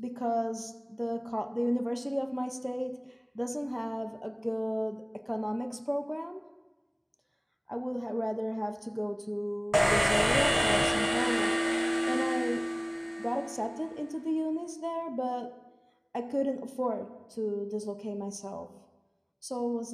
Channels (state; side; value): identical; both; correlation 1.00